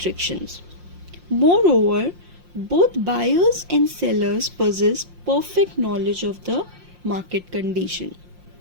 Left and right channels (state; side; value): late; left; 5.6 ms